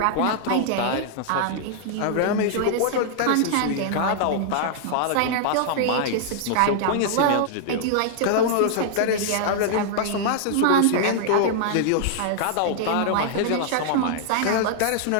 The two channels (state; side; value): different; both; correlation -0.01